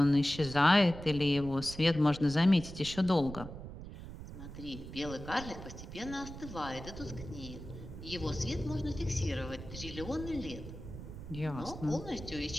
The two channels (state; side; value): noise; right; rumble, 11 dB below the sound